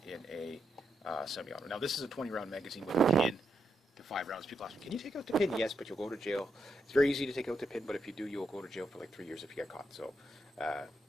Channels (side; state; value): both; normal; correlation 0.81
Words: in a semi-auto. Now, this is a 20-round magazine with a pin to 5 rounds. People ask me, can you take out the pin? Yes, but you'll go to jail. It's very easy to take out the pin, but if you do, you'll go to jail for like 3 years if you get caught. So,